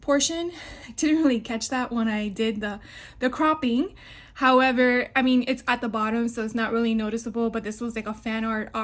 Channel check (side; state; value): both; identical; correlation 1.00